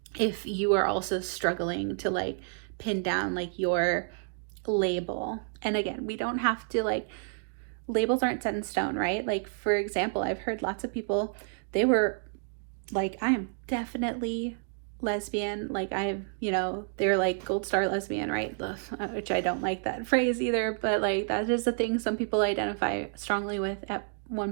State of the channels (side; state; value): left; silent; digital silence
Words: if you are also struggling to like pin down like your label. And again, we don't have to, like, labels aren't set in stone, right? Like, for example, I've heard lots of people, they were like, I am definitely lesbian, like I've, you know, they're like gold star lesbian, right? Ugh, which I don't like that phrase either, but like that is a thing some people identify strongly with at